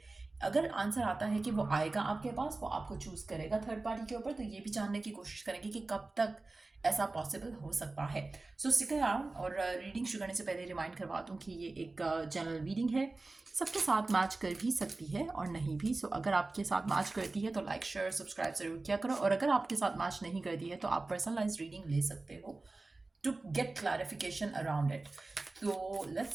अगर आंसर आता है कि वो आएगा आपके पास, वो आपको चूज करेगा थर्ड पार्टी के ऊपर, तो ये भी जानने की कोशिश करेंगे कि कब तक ऐसा पॉसिबल हो सकता है। सो स्टिक अराउंड। और रीडिंग शुरू करने से पहले रिमाइंड करवा दूं कि ये एक जनरल रीडिंग है, सबके साथ मैच कर भी सकती है और नहीं भी। सो अगर आपके साथ मैच करती है तो लाइक शेयर सब्सक्राइब जरूर किया करो, और अगर आपके साथ मैच नहीं करती है तो आप पर्सनलाइज रीडिंग ले सकते हो to get clarification around it. तो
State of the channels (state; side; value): quieter; left; 3.3 dB